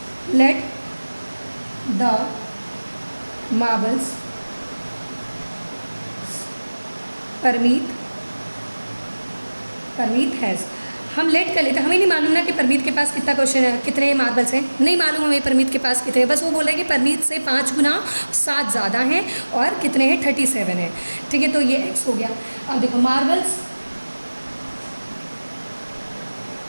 let the marbles Parmeet has, हम लेट कर लेते हैं, हमें नहीं मालूम ना कि परमीत के पास कितना क्वेश्चन है, कितने मार्बल्स हैं, नहीं मालूम हमें परमीत के पास कितने हैं। बस वो बोला है कि परमीत से 5 गुना 7 ज़्यादा हैं और कितने हैं, 37 हैं। ठीक है, तो ये x हो गया। अब देखो मार्बल्स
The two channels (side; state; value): both; inverted; correlation -1.00